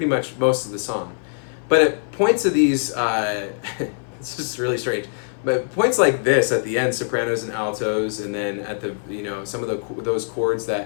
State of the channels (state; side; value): silent; right; 58 dB below the other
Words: much most of the song. But at points of these, it's just really strange. But points like this at the end, sopranos and altos, and then at the some of those chords